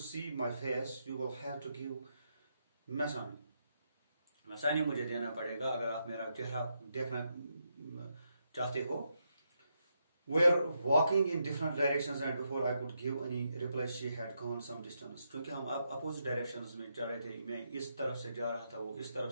see my face, you will have to give Masani मुझे देना पड़ेगा अगर आप मेरा चेहरा देखना चाहते हो। We are walking in different directions and before I could give any reply, she had gone some distance." क्योंकि हम अपोजिट डायरेक्शंस में चल रहे थे, मैं इस तरफ से जा रहा था, वो इस तरफ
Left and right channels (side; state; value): both; inverted; correlation -0.81